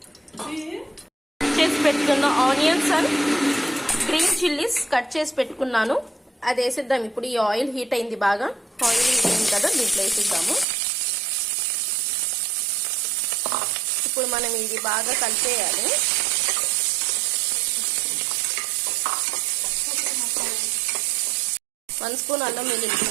చేసి పెట్టుకున్న onions and green chillies cut చేసి పెట్టుకున్నాను. అది వేసిద్దాం. ఇప్పుడు ఈ ఆయిల్ హీట్ అయింది, బాగా ఆయిల్ హీట్ అయింది కదా, దీంట్లో వేసిద్దాము. ఇప్పుడు మనం ఇది బాగా కలిపేయాలి. వన్ స్పూన్ అల్లం వెల్లుల్లి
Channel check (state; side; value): drops out; left; at 10.7 s